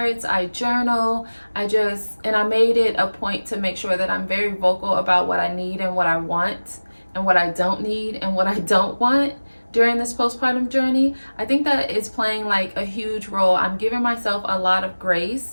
I journal, and I made it a point to make sure that I'm very vocal about what I need and what I want and what I don't need and what I don't want during this postpartum journey. I think that is playing like a huge role. I'm giving myself a lot of grace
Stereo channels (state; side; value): inverted; both; correlation -1.00